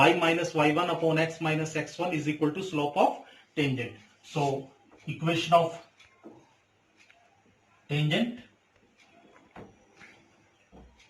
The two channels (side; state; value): both; identical; correlation 1.00